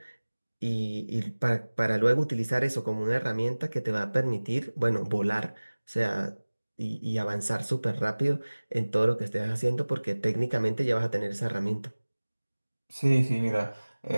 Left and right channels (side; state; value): both; inverted; correlation -1.00